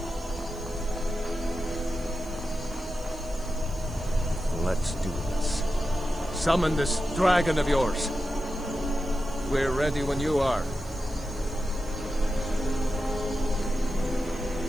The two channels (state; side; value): noise; right; hiss, 24 dB below the sound